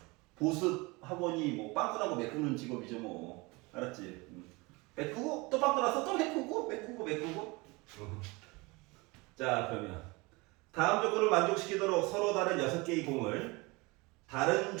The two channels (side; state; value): left; quieter; 25.2 dB